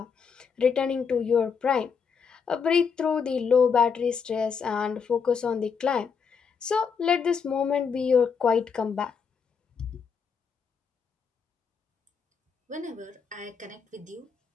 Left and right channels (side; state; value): right; quieter; 6.1 dB